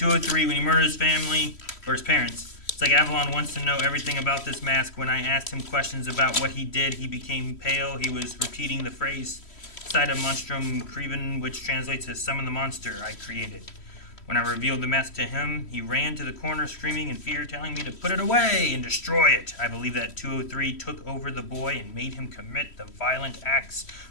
when he murdered his family or his parents. It's like Avalon wants to know everything about this mask. When I asked him questions about what he did, he became pale. He was repeating the phrase Cita Monstrum Creven, which translates as summon the monster I created. When I revealed the mask to him, he ran to the corner screaming in fear, telling me to put it away and destroy it. I believe that 203 took over the boy and made him commit the violent acts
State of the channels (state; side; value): late; right; 3.1 ms